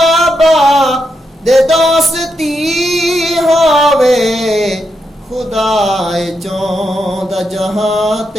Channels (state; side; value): normal; both; correlation 0.83